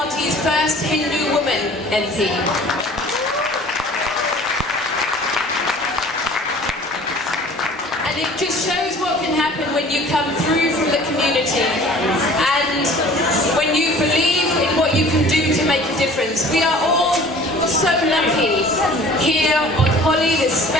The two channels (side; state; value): both; normal; correlation 0.48